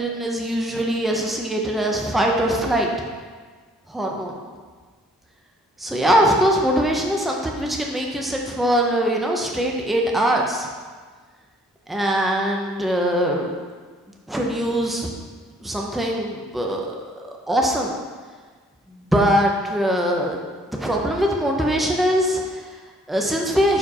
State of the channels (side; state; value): both; normal; correlation 0.61